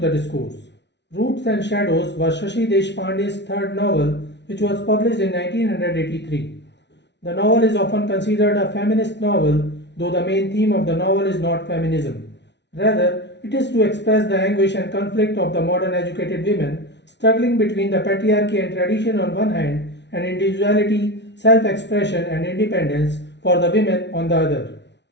Discourse. Roots and Shadows was Shashi Deshpande's third novel, which was published in 1983. The novel is often considered a feminist novel, though the main theme of the novel is not feminism. Rather, it is to express the anguish and conflict of the modern educated women struggling between the patriarchy and tradition on one hand and individuality, self-expression and independence for the women on the other.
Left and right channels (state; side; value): late; right; 0.50 ms